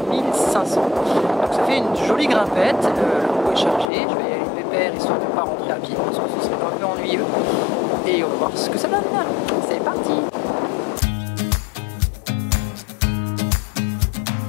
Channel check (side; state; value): right; drops out; at 3.9 s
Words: 1500. Donc ça fait une jolie grimpette, la roue est chargée, je vais y aller pépère histoire de ne pas rentrer à pied parce que ce serait un peu ennuyeux. Et on va voir ce que ça donne. C'est parti!